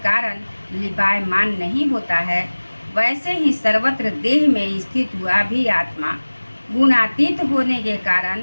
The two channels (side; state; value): both; inverted; correlation -1.00